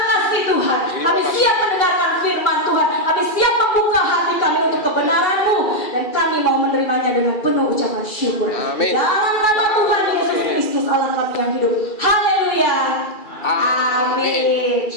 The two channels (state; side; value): late; right; 2.3 ms